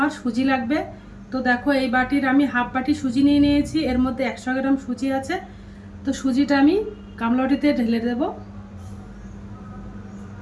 সুজি লাগবে। তো দেখো এই বাটির আমি হাফ বাটি সুজি নিয়ে নিয়েছি, এর মধ্যে 100 গ্রাম সুজি আছে। তো সুজিটা আমি গামলা বাটিতে ঢেলে দেব।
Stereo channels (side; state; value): both; identical; correlation 1.00